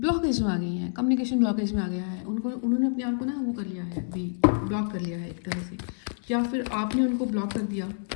में आ गई हैं, कम्युनिकेशन ब्लॉकेज में आ गया है, उन्होंने अपने आप को ना वो कर लिया है, अभी ब्लॉक कर लिया है एक तरह से, या फिर आपने उनको ब्लॉक कर दिया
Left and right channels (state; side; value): silent; right; digital silence